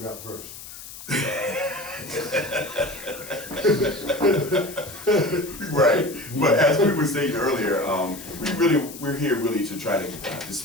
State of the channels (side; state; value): left; noise; hiss, 14 dB below the sound